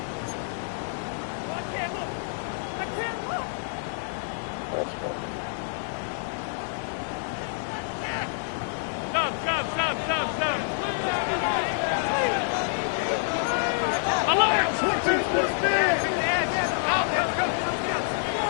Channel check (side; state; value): right; silent; digital silence